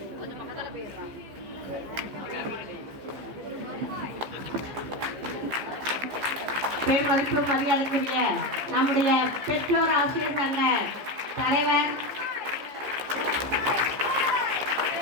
கொஞ்சம் பக்கத்தில் போயிடுறான். பேர் மதிப்பு மரியாதைக்குரிய நம்முடைய பெற்றோர் ஆசிரியர் சங்க தலைவர்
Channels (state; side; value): late; left; 15 ms